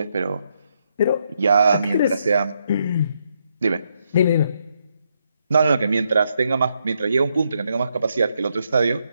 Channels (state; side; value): inverted; both; correlation -0.78